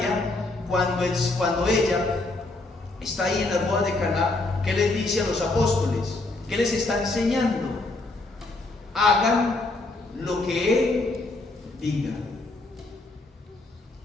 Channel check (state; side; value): quieter; right; 3.1 dB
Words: cuando ella está ahí en las bodas de Caná, ¿qué les dice a los apóstoles? ¿Qué les está enseñando? Hagan lo que Él diga.